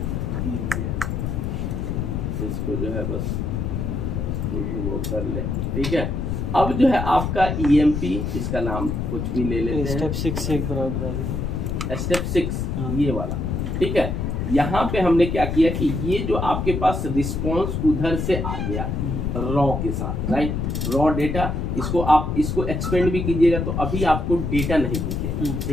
इसको जो है बस वो कर ले, ठीक है। अब जो है आपका ईएमपी, इसका नाम कुछ भी ले लेते हैं, स्टेप 6 से एक बराबर, स्टेप 6 ये वाला, ठीक है। यहाँ पे हमने क्या किया कि ये जो आपके पास रिस्पॉन्स उधर से आ गया रॉ के साथ, राइट, रॉ डेटा, इसको आप इसको एक्सपेंड भी कीजिएगा तो अभी आपको डेटा नहीं दिखेगा,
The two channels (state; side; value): noise; left; rumble, 1 dB below the sound